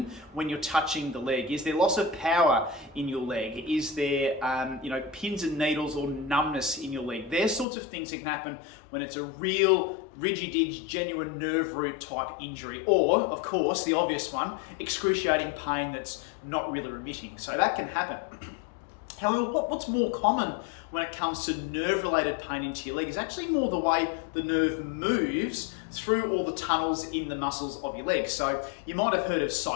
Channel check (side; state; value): right; drops out; at 7.7 s